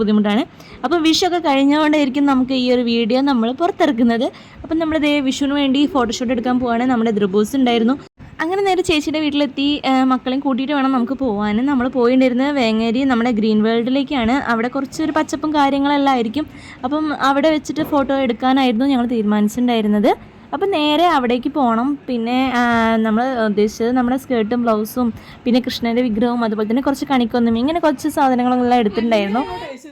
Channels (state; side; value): identical; both; correlation 1.00